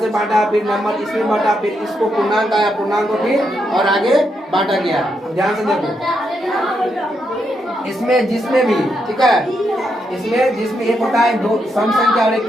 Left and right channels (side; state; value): both; normal; correlation 0.81